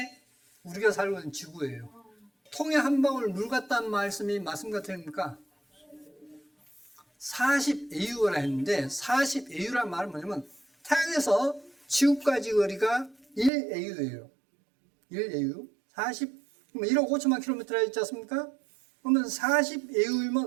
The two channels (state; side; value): drops out; left; at 13.5 s